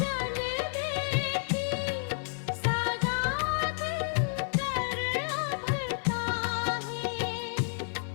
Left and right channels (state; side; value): silent; right; digital silence